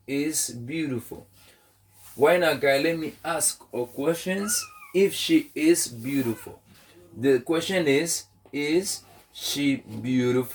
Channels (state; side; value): identical; both; correlation 1.00